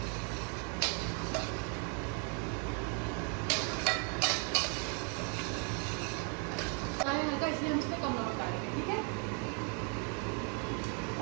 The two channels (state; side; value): quieter; left; 39.4 dB